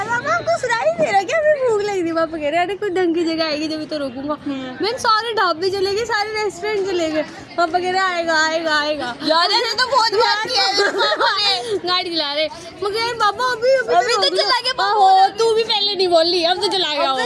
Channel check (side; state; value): both; identical; correlation 1.00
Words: पापा आपको सुनाई नहीं दे रहा क्या मैं भूख लग रही है? पापा कह रहे अरे कोई ढंग की जगह आएगी जब तो रोकूंगा। मैं सारे ढाबे चले गए, सारे रेस्टोरेंट चले गए, पापा कह रहे आएगा यार ऐसे तो बहुत बात किया है। गाड़ी चला रहे मगर पापा अभी तो चला गया, तू भी पहले नहीं बोल ली, अब तो चला गया।